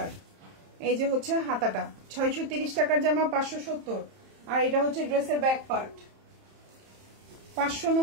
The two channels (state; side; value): late; left; 30 ms